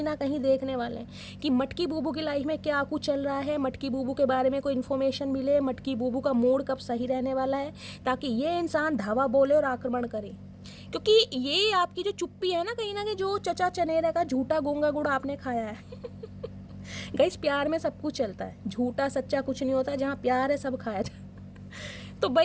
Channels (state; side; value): identical; both; correlation 1.00